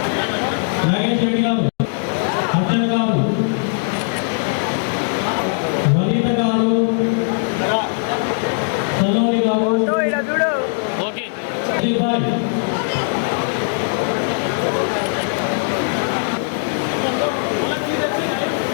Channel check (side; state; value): right; silent; digital silence